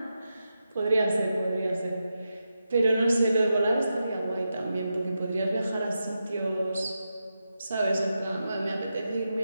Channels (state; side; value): inverted; both; correlation -0.88